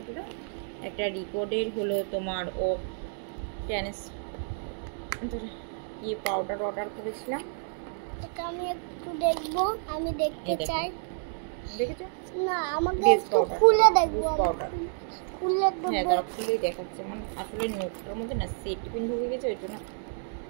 দাও। একটা রিকর্ডের হলো তোমার পাউডার অর্ডার করেছিলাম। এটা আমি একটু দেখবো, আমি দেখতে চাই। দেখেছো না, আমাকে একটু খুলে দেখবো। হ্যাঁ, খুলেই দেখাচ্ছে। মানে আসলে নোটটার মধ্যে না সেট পিন ঢুকে গেছে, ওই জন্য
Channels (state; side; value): silent; left; 58 dB below the other